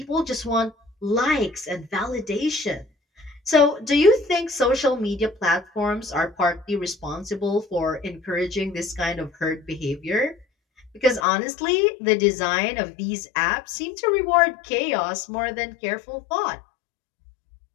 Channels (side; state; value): right; drops out; at 11.2 s